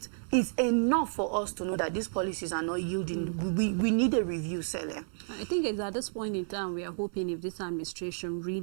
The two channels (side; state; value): left; silent; 57 dB below the other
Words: enough for us to know that these policies are not yielding. We need a review, Celia. I think it's at this point in time we are hoping if this administration